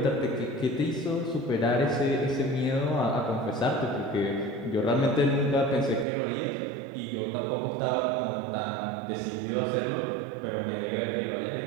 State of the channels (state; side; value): drops out; left; at 6.1 s